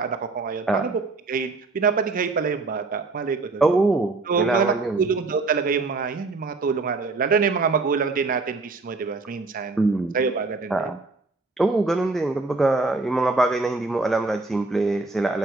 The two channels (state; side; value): quieter; left; 3.6 dB